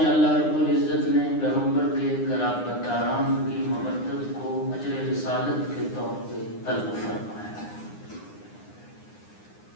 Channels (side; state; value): right; late; 9.7 ms